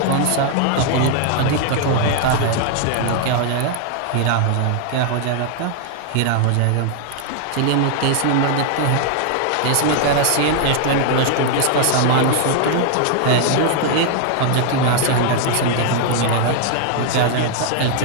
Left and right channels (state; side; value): different; both; correlation 0.00